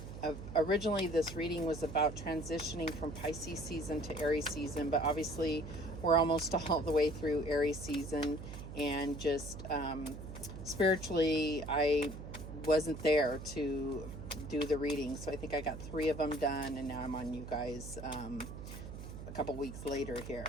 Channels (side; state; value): right; noise; hum, 10 dB below the sound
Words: originally this reading was about transitioning from Pisces season to Aries season, but obviously we're almost all the way through Aries season, and just spiritually I wasn't there to do the reading, so I think I got 3 of them done, and now I'm on you guys a couple weeks later here.